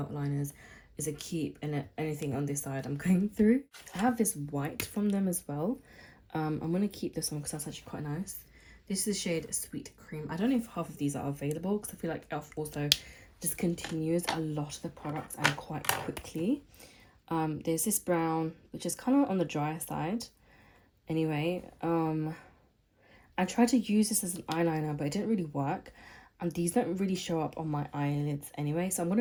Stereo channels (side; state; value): both; identical; correlation 1.00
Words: liners is a keep. And anything on this side I'm going through. I have this white from them as well. I'm going to keep this one because that's actually quite nice. This is the shade Sweet Cream. I don't know if half of these are available because I feel like e.l.f. also discontinues a lot of the products and quite quickly. There's this brown, which is kind of on the drier side. Anyway, I tried to use this as an eyeliner, but it didn't really work. And these don't really show up on my eyelids anyway. So I'm